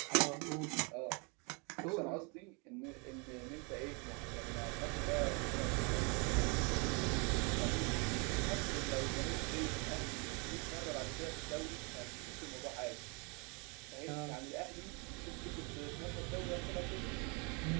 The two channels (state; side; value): quieter; left; 32.4 dB